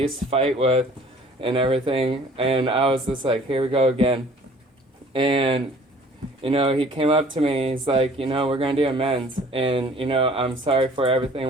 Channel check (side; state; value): both; normal; correlation 0.52